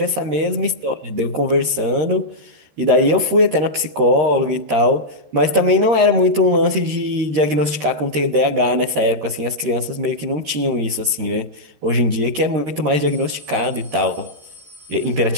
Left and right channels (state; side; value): late; left; 13 ms